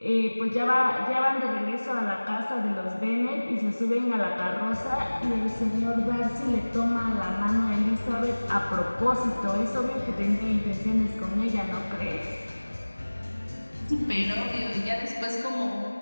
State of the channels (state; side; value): inverted; both; correlation -1.00